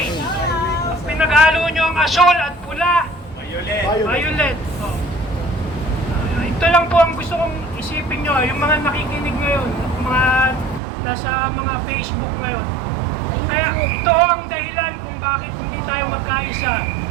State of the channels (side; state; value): left; drops out; at 10.8 s